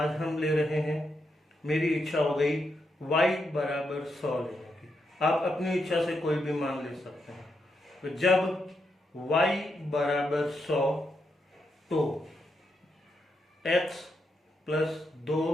हम ले रहे हैं, मेरी इच्छा हो गई y बराबर 100 लेने की। आप अपनी इच्छा से कोई भी मान ले सकते हैं। तो जब y बराबर 100 तो x प्लस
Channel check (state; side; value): normal; both; correlation 0.82